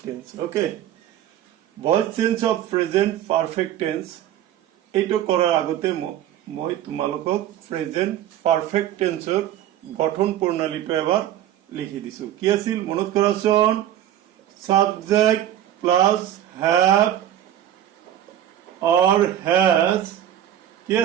tense okay voice change of present perfect tense এইটো কৰাৰ আগতে মই তোমালোকক প্ৰেজেন্ট পাৰফেক্ট টেন্সৰ গঠন প্ৰণালীটো এবাৰ লিখি দিছো কি আছিল মনত কৰাচোন subject plus have or has কি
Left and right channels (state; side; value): quieter; left; 11.6 dB